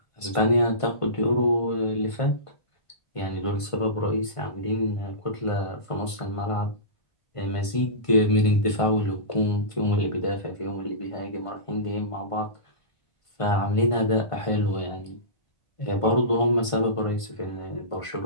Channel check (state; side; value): late; right; 1.5 ms